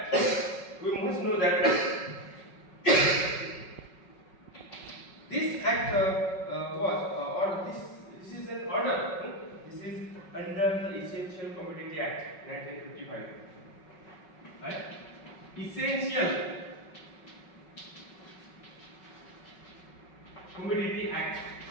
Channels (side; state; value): right; late; 5.4 ms